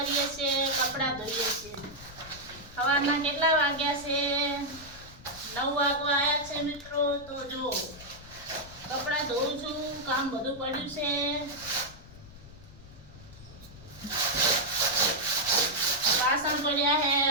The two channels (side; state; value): left; noise; rumble, 18 dB below the sound